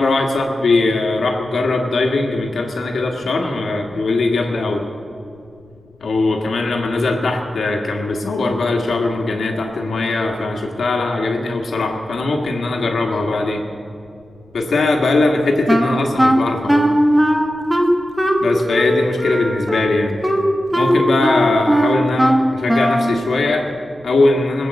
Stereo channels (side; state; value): left; noise; rumble, 30 dB below the sound